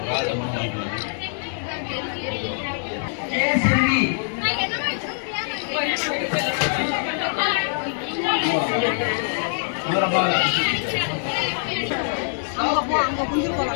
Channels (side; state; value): right; silent; digital silence